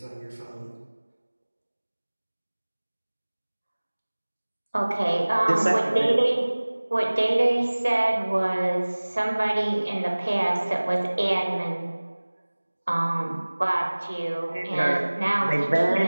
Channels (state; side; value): inverted; both; correlation -1.00